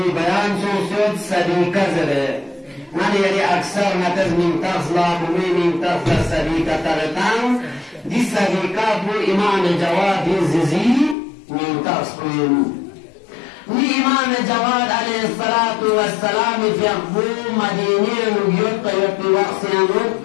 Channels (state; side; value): drops out; right; at 11.2 s